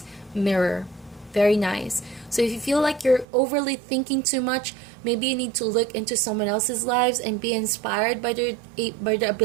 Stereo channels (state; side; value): drops out; left; at 3.2 s